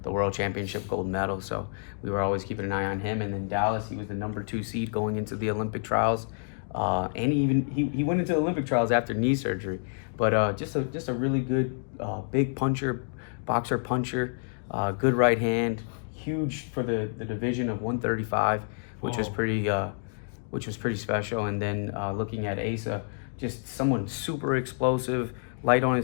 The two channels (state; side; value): silent; right; digital silence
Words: World Championship gold medal. So we were always keeping an eye on him. And then Dallas, he was the number 2 seed going into the Olympic trials. And he went into the Olympic trials after knee surgery. But just a really good big boxer puncher, good right hand, huge for the division of 135, which was pretty special. And then looking at Asa, just someone super explosive, light on